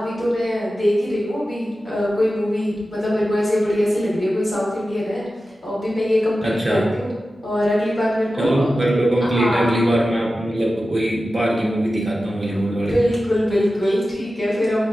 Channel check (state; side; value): normal; both; correlation 0.93